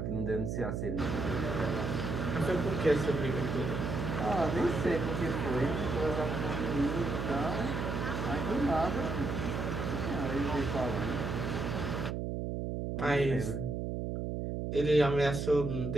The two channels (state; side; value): noise; right; hum, 2 dB below the sound